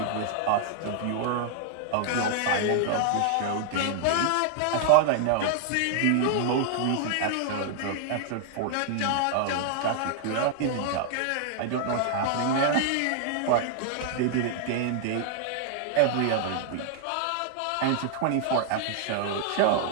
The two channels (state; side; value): different; both; correlation 0.00